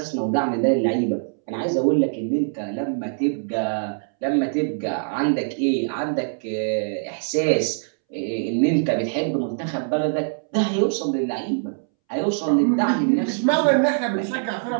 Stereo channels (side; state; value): left; silent; 63 dB below the other